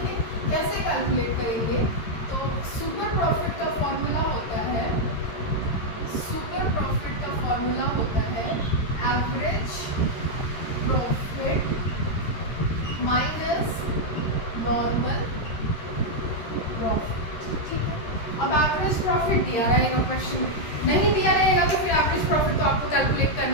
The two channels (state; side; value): late; right; 13 ms